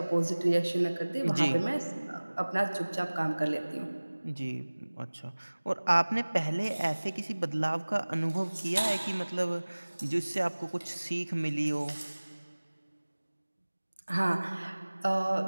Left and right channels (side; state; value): both; inverted; correlation -1.00